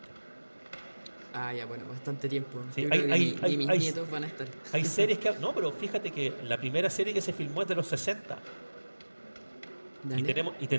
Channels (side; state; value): both; inverted; correlation -1.00